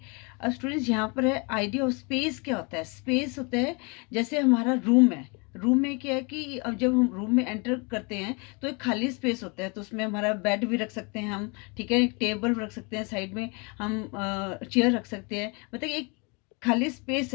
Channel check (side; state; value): right; quieter; 31.3 dB